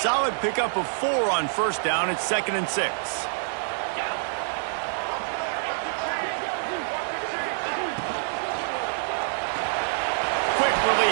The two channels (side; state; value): left; silent; digital silence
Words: pickup of 4 on first down. It's 2nd and 6. Quick